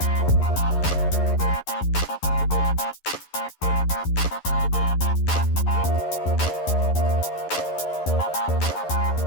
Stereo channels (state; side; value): late; right; 11 ms